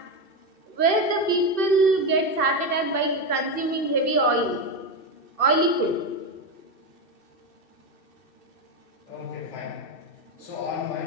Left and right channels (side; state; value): right; late; 2.6 ms